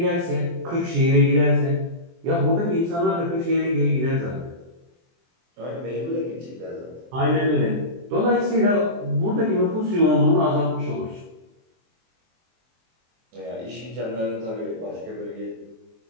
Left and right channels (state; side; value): late; left; 23 ms